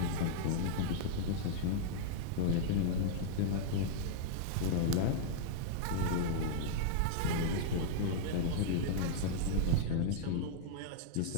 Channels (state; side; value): different; both; correlation -0.01